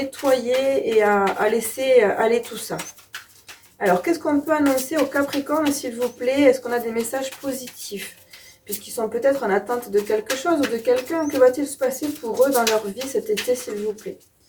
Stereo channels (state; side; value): identical; both; correlation 1.00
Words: et à laisser aller tout ça. Alors, qu'est-ce qu'on peut annoncer aux Capricornes, s'il vous plaît? Est-ce qu'on a des messages positifs? Puisqu'ils sont peut-être en attente de quelque chose ou de quelqu'un. Que va-t-il se passer pour eux dans leur vie cet été, s'il vous plaît?